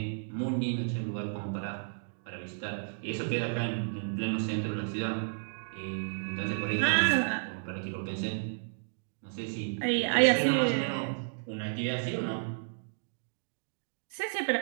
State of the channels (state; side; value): silent; left; digital silence